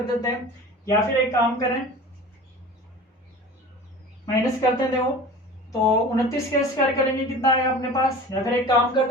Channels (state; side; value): normal; both; correlation 0.38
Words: देते हैं, या फिर एक काम करें माइनस करते हैं। देखो तो 29 का स्क्वायर करेंगे कितना आएगा अपने पास, या फिर एक काम